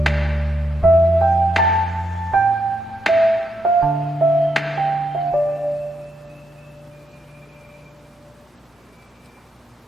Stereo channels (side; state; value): both; normal; correlation 0.80